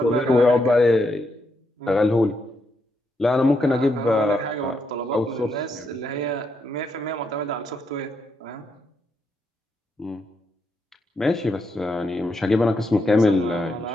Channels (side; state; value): both; normal; correlation 0.80